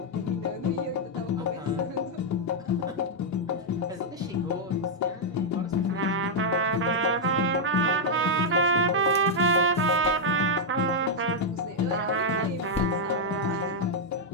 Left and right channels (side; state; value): both; normal; correlation -0.03